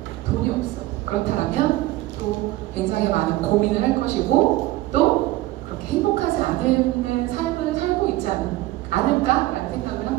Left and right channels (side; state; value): left; quieter; 17.2 dB